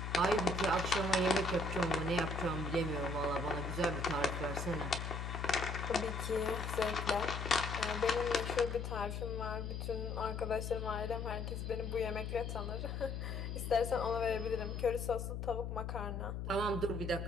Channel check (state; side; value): noise; left; hum, 4 dB below the sound